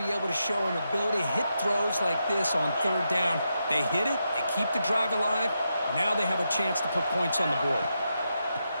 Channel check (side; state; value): both; inverted; correlation -0.85